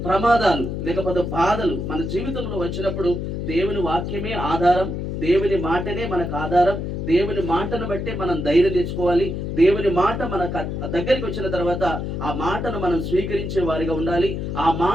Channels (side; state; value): left; noise; hum, 4 dB below the sound